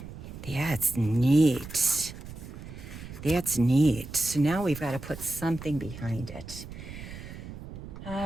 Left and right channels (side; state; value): right; noise; rumble, 12 dB below the sound